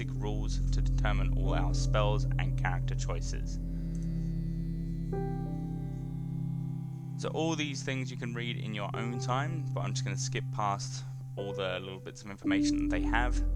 rules to determine all our spells and character choices. So all these things you can read in your own time, but I'm just going to skip past all the little bits of information that they have,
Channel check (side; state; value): both; identical; correlation 1.00